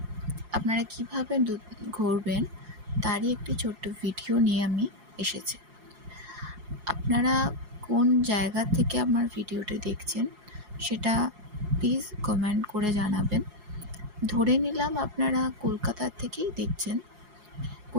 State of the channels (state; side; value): late; left; 4.8 ms